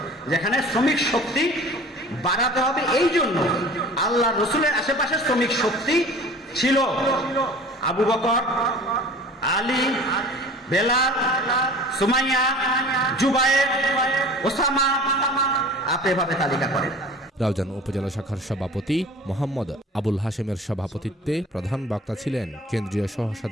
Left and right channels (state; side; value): normal; both; correlation 0.43